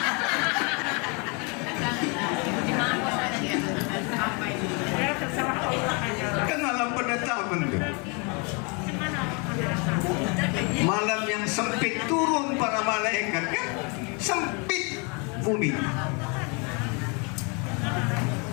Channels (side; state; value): right; quieter; 32.7 dB